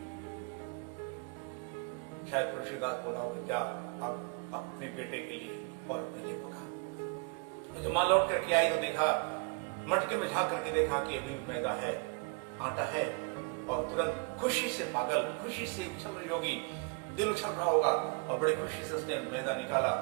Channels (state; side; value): quieter; left; 32.8 dB